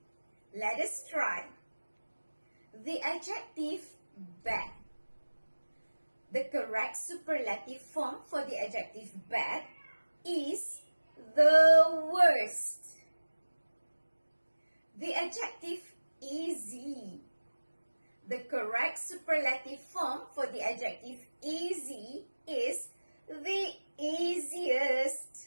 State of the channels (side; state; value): both; inverted; correlation -1.00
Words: Let us try. The adjective bad. The correct superlative form for the adjective bad is the worst. The adjective easy. The correct superlative form for the adjective easy is the